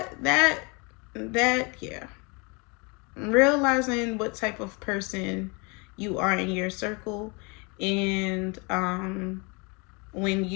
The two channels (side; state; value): right; quieter; 30.7 dB